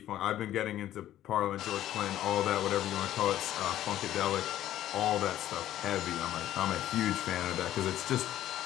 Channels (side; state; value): right; quieter; 12.8 dB